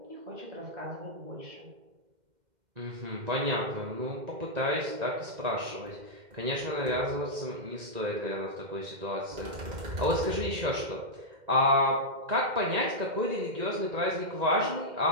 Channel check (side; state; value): left; late; 2.1 ms